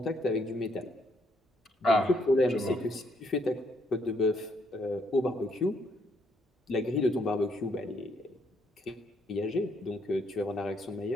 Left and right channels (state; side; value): normal; both; correlation 0.71